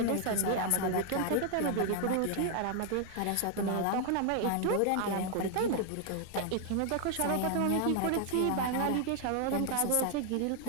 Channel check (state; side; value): different; both; correlation 0.00